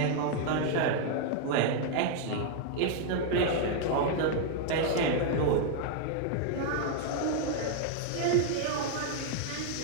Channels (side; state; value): both; different; correlation 0.00